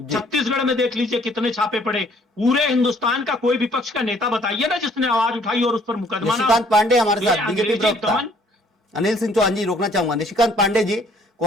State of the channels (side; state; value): both; normal; correlation 0.61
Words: छत्तीसगढ़ में देख लीजिए कितने छापे पड़े। पूरे हिंदुस्तान का कोई विपक्ष का नेता बताइए ना जिसने आवाज उठाई और उस पर मुकदमा। निशिकांत पांडे हमारे साथ, बीजेपी प्रवक्ता। अनिल सिंह चौहान जी रोकना चाहूंगा। निशिकांत पांडे जी,